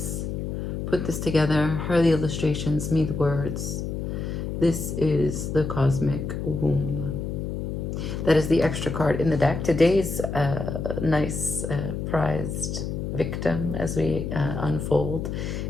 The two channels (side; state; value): left; noise; hum, 4 dB below the sound